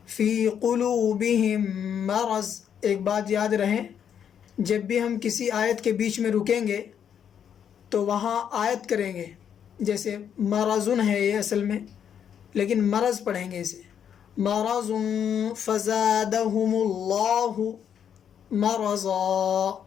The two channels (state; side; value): quieter; right; 8.5 dB